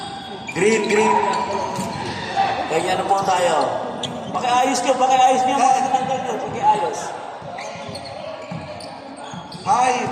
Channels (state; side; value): identical; both; correlation 1.00